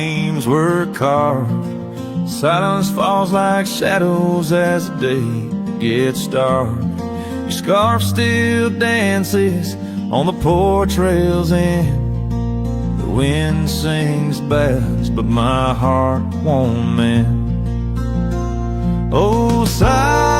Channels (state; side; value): identical; both; correlation 1.00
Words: were carved, silence falls like shadows as the day gets dark. Your scarf still dances on the porch rails and the wind sings bass, but my heart won't mend. Oh,